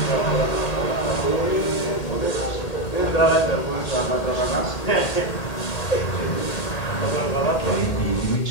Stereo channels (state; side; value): late; right; 1.8 ms